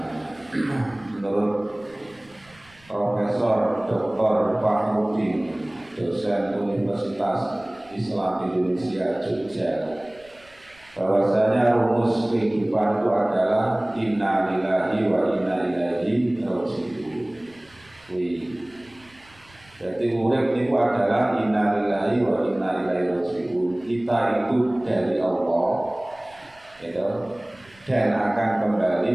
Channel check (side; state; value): right; noise; rumble, 28 dB below the sound